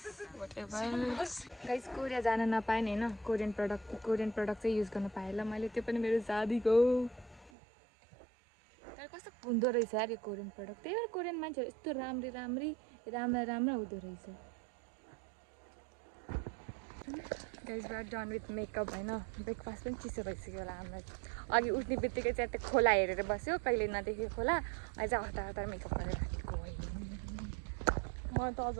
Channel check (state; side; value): drops out; left; at 7.5 s